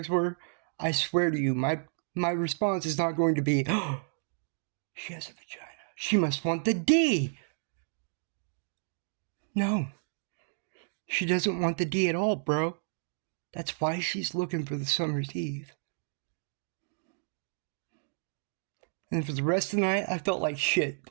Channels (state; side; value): silent; left; digital silence